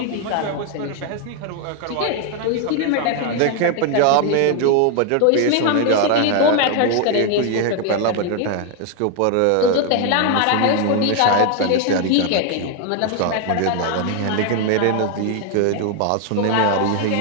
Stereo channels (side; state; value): both; different; correlation 0.01